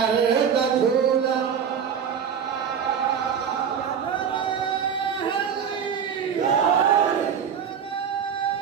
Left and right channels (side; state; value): left; quieter; 7.5 dB